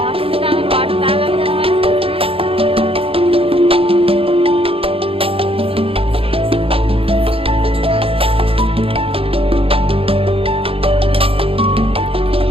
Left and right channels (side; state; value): left; late; 0.27 ms